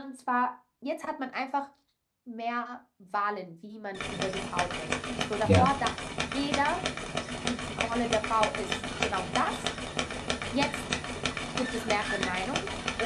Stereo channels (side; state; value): both; identical; correlation 1.00